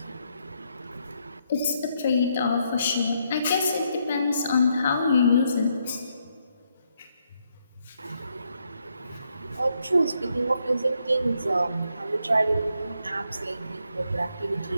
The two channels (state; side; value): inverted; both; correlation -0.77